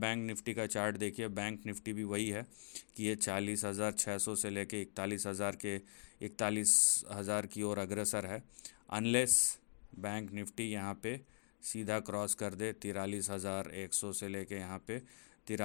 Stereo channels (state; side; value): silent; right; digital silence